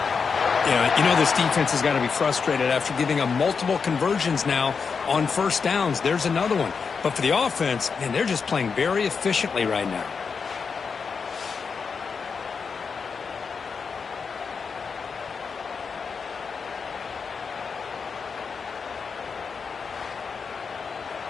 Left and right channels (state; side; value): quieter; right; 5.6 dB